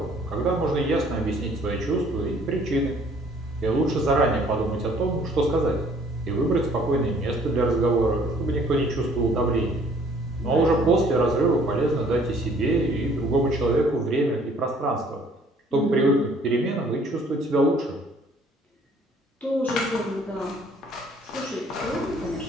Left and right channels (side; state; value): both; normal; correlation 0.58